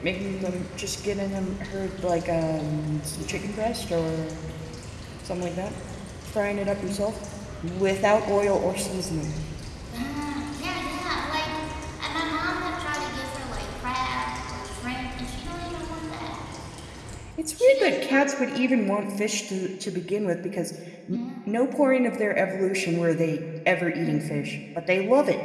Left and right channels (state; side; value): identical; both; correlation 1.00